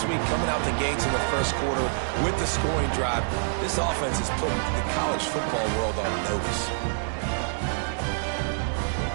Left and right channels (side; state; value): left; silent; digital silence